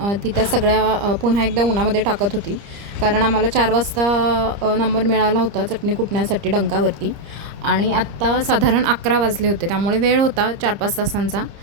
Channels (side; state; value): left; late; 30 ms